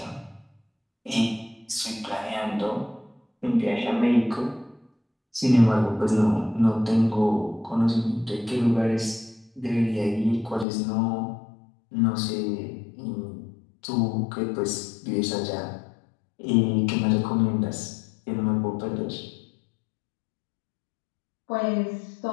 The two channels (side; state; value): right; drops out; at 10.7 s